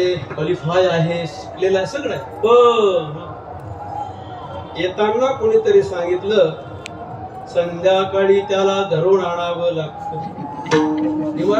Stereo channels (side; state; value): both; identical; correlation 1.00